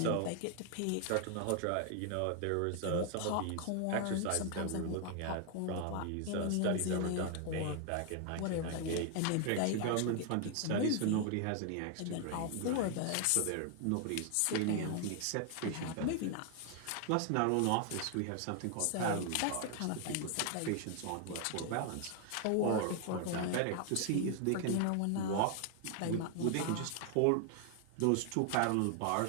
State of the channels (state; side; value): different; both; correlation 0.00